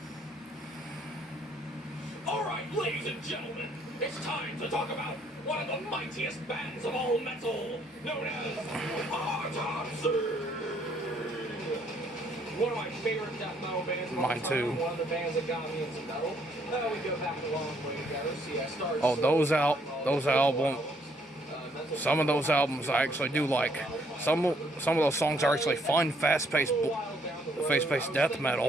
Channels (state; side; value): normal; both; correlation 0.68